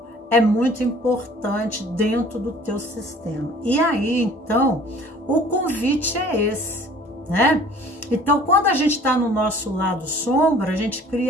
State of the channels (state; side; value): normal; both; correlation 0.50